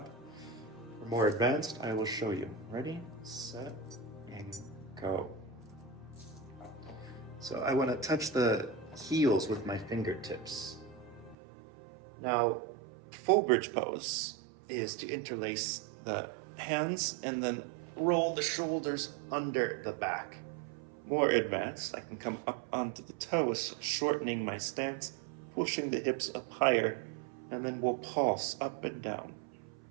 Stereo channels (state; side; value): drops out; left; at 11.4 s